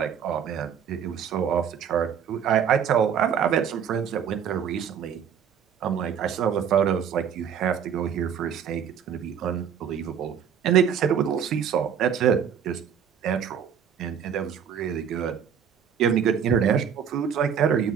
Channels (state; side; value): quieter; left; 8.0 dB